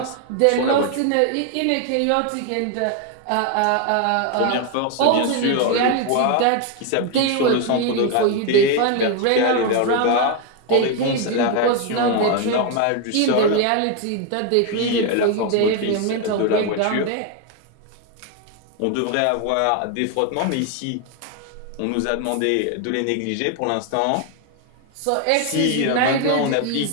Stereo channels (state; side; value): different; both; correlation 0.01